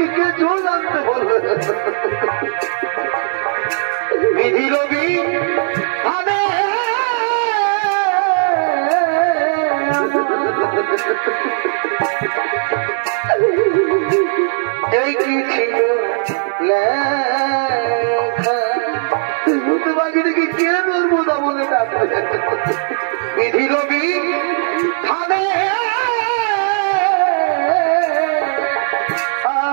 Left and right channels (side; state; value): left; silent; 61 dB below the other